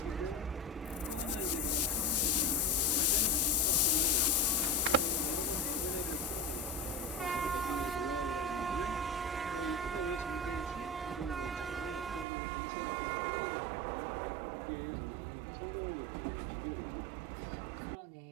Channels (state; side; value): drops out; left; at 12.2 s